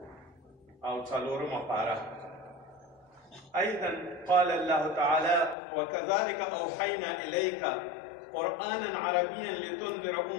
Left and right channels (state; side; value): drops out; right; at 5.6 s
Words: أو څلورم پاره. أيضا قال الله تعالى: وكذلك أوحينا إليك قرآنا عربيا لتنذر